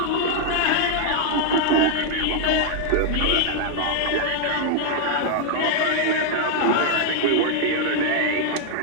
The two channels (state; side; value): different; both; correlation 0.00